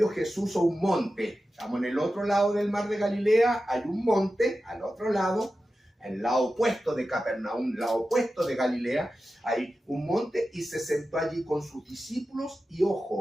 Jesús a un monte. Estamos en el otro lado del mar de Galilea, hay un monte al otro lado, el lado opuesto de Capernaum, el lado opuesto de Galilea, hay un monte, y se sentó allí con sus discípulos, y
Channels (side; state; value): both; normal; correlation 0.93